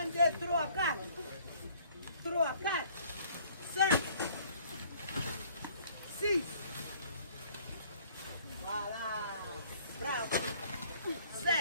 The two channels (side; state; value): both; inverted; correlation -0.58